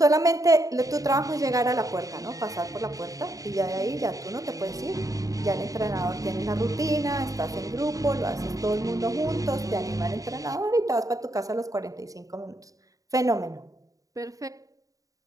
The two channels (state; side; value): late; left; 0.17 ms